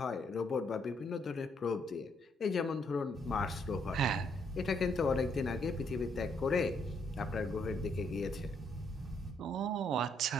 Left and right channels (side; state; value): both; normal; correlation 0.72